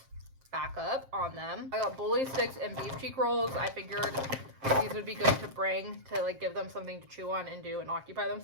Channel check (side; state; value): left; late; 7.5 ms